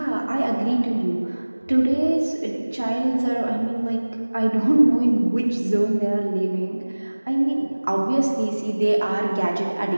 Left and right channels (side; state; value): both; inverted; correlation -1.00